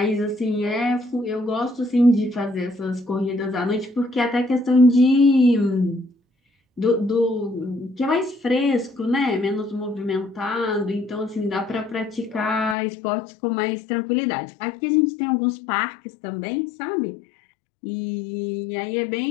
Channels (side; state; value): right; drops out; at 12.8 s